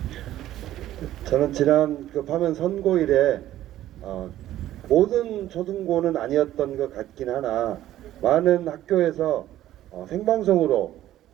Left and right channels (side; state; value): left; quieter; 13.5 dB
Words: 저는 지난 그 파면 선고일에 모든 초등고는 아니었던 것 같긴 하나 많은 학교에서 생방송으로